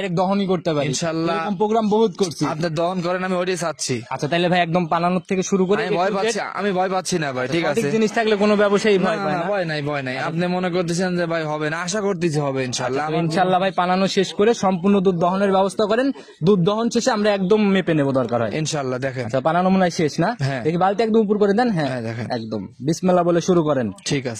দহনই করতে পারি, ইনশাআল্লাহ। এরকম প্রোগ্রাম বহুত করছি। আপনি দহন করেন, আমি ওইটাই চাচ্ছি। আচ্ছা, তাহলে ভাই একদম পালানোর থেকে শুরু করে আমি ভয় পাচ্ছি, আমি ভয় পাচ্ছি না ভাই, ঠিক আছে। জিনিস থাকলে কোনো ব্যবসায়ী না ভয় পায় না, না। ভয় নাই, ভয় নাই। আপনি মনে করতেছেন যে ভাই হবে না, আশা করতেছি হবে ইনশাআল্লাহ। তো ইনশাআল্লাহ ভাই পালানো শেষ করে সম্পূর্ণ দুধ দহনের ব্যবস্থা করেন, দুধ দহন শেষে আমরা একদম মেপে নেবো দরকার হয়। ইনশাআল্লাহ, দেখেন। আচ্ছা, পালানো মনে হয় শেষ না? হ্যাঁ। দেখি বালতি একদম উপর করে দেন। হ্যাঁ হ্যাঁ, দেখেন। একদম বিসমিল্লাহ বলে শুরু করেন। ঠিক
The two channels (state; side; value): identical; both; correlation 1.00